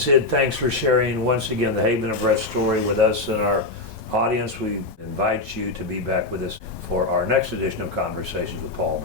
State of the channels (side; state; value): right; quieter; 3.0 dB